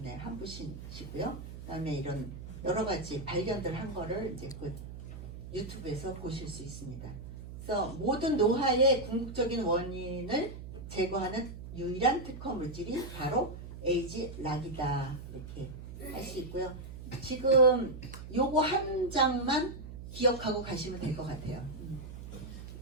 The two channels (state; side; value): noise; right; hum, 11 dB below the sound